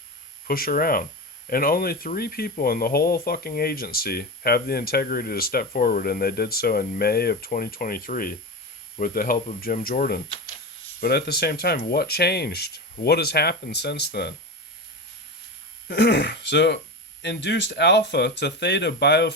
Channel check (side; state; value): both; normal; correlation 0.22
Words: push around. And only 3 people in the whole fucking agency have the integrity to step forward, and they did so in May of 2023 with the help of Jim Jordan. But at the same time, what changed? What has happened since then? So, induced alpha to theta